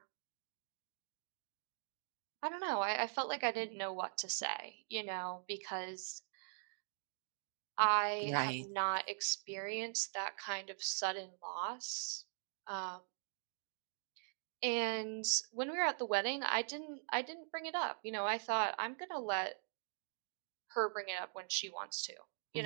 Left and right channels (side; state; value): left; silent; digital silence